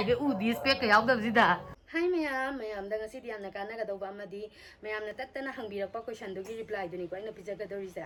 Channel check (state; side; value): identical; both; correlation 1.00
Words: ge u di spec ka yaw dab sida Hi mayam da ngasi diam na kana ga doba amadi mayam na tattana hangbirakpa question do gi reply do ni ko ina pijaga do